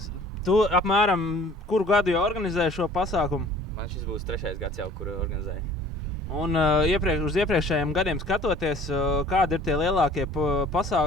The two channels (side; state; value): both; normal; correlation 0.50